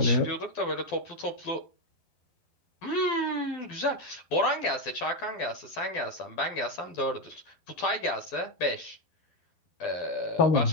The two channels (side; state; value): right; late; 12 ms